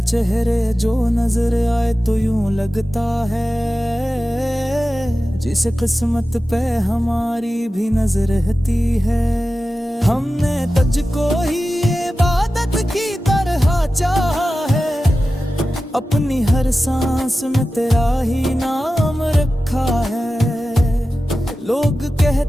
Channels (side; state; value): both; normal; correlation 0.94